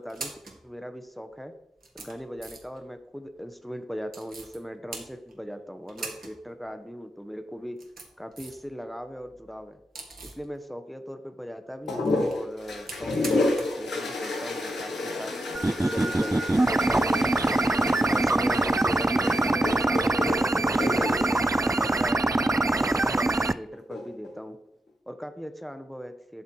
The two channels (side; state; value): both; normal; correlation 0.85